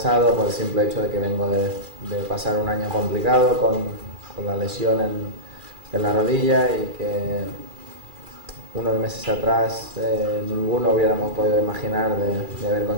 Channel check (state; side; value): late; left; 2.4 ms